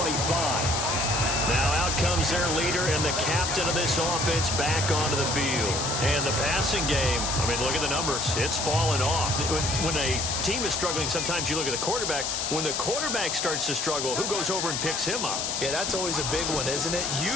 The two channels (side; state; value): left; noise; hiss, 1 dB below the sound